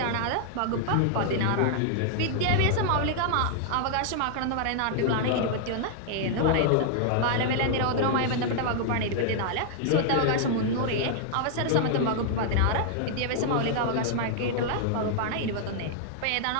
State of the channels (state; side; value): different; both; correlation -0.01